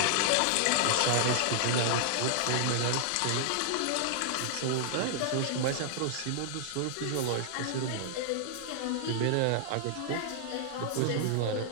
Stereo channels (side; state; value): both; different; correlation -0.01